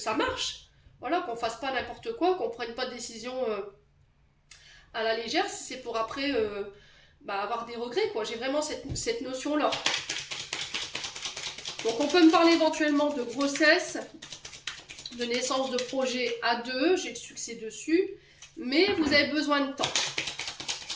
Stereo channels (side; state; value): both; identical; correlation 1.00